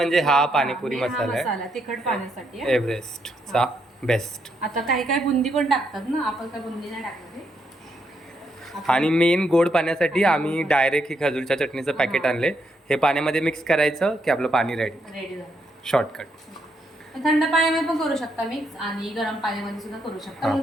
हा पाणीपुरी मसाला आहे तिखट पाण्यासाठी एव्हरेस्टचा बेस्ट. आता काही काही बुंदी पण टाकतात ना, आपण काय बुंदी नाही टाकणार. आणि मेन गोड पाण्यासाठी आम्ही डायरेक्ट ही खजूरच्या चटणीचं पॅकेट आणले. हे पाण्यामध्ये मिक्स करायचं की आपलं पाणी रेडी झालं. शॉर्टकट. थंड पाण्यामध्ये पण करू शकता मिक्स आणि गरम पाण्यामध्ये सुद्धा करू शकता.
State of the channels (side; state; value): both; normal; correlation 0.78